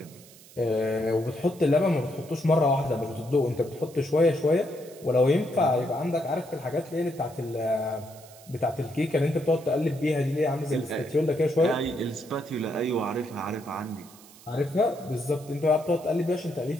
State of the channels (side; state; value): right; noise; hiss, 22 dB below the sound